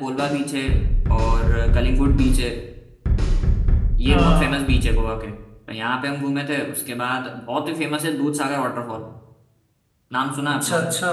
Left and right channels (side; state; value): both; identical; correlation 1.00